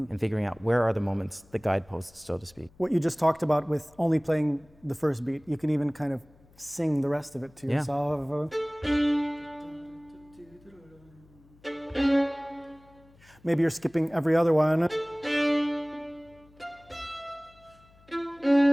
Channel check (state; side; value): noise; left; hum, 28 dB below the sound